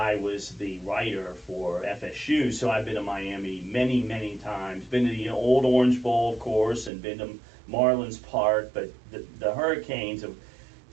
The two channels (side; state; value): left; drops out; at 6.9 s